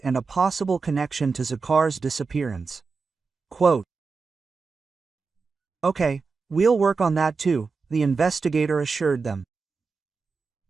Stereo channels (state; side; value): quieter; left; 4.7 dB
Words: and a possible connection to Zakhar's disappearance. Quote, "Okay, we'll work on that too," the investigator assured them.